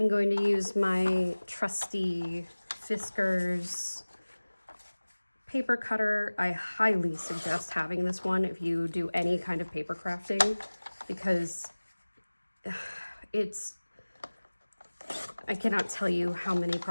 going to use my trusty Fiskars paper cutter. I highly suggest having this one if you do any kind of paper crafting, because I cannot tell you how many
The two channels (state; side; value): inverted; both; correlation -1.00